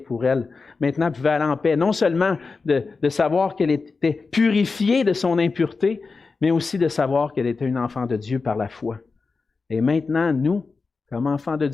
pour elle. Maintenant, elle pouvait aller en paix, non seulement de savoir qu'elle était purifiée de son impureté, mais aussi de savoir qu'elle était une enfant de Dieu par la foi. Et maintenant, nous, comme enfants de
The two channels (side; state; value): right; quieter; 4.4 dB